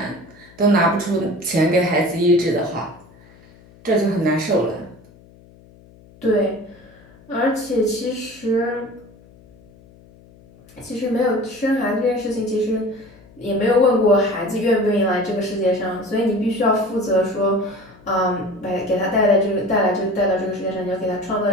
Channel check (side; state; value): left; noise; hum, 25 dB below the sound